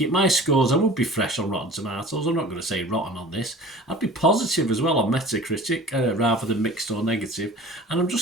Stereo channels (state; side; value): normal; both; correlation 0.43